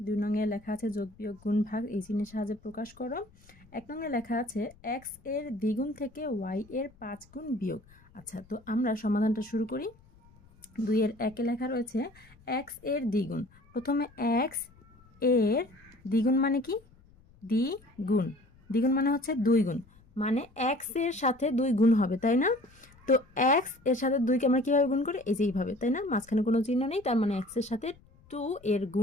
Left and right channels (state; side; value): noise; left; rumble, 27 dB below the sound